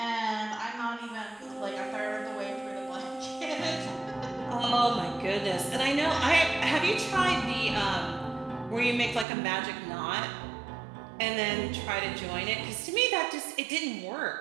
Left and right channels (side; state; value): left; drops out; at 9.2 s